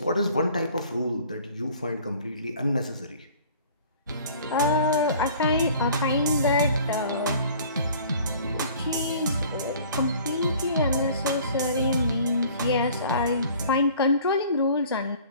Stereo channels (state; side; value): inverted; both; correlation -0.50